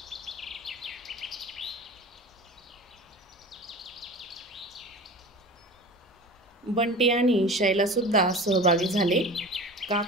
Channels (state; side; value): normal; both; correlation 0.36